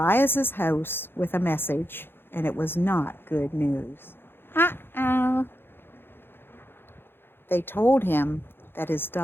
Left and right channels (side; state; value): right; late; 0.10 ms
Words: house with a message, and it was not good news. Uh-oh. They told him that his